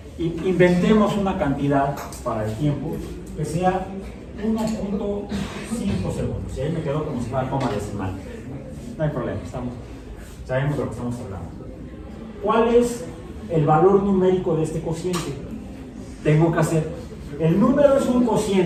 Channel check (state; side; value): identical; both; correlation 1.00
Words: inventemos una cantidad para el tiempo que sea 1.5 segundos. Y ahí me quedo como si fuera coma decimal. No hay problema, sabemos de lo que estamos hablando. ¿Cuál es el valor numérico de este cociente? Tengo que hacer. El número es un